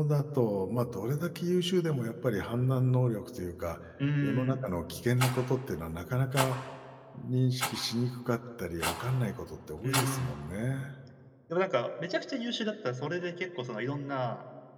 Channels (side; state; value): both; identical; correlation 1.00